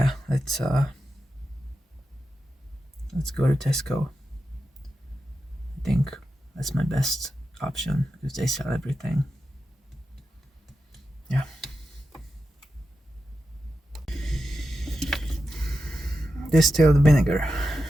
let's go to Tesco. I think that's my best option because they sell everything. Yeah. Distilled vinegar.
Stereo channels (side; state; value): both; normal; correlation 0.89